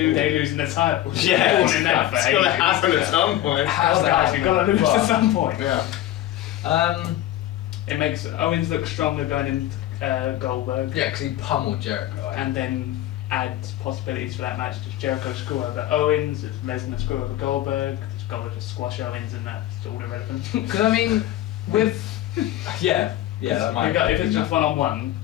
Day losing the title. Yeah, We're calling that for it's gonna ages. happen at some point. How's that Guys, we've got to lose happening? at some point. Yeah. It makes Owens look stronger going into Goldberg. Yeah, because he pummeled Jericho. And then add possibilities for that match. Does Jericho screw over Owens? Does Lesnar screw over Goldberg? Does Goldberg just squash Owens and that's all irrelevant? Because I mean, with that might. If it's just one-on-one,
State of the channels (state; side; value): quieter; right; 13.5 dB